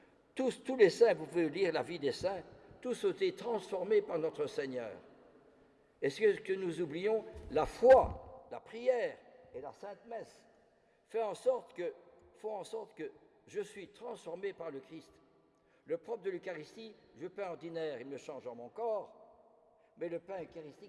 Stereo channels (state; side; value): identical; both; correlation 1.00